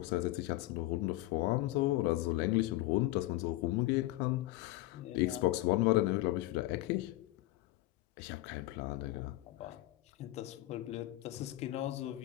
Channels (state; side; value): quieter; right; 17.8 dB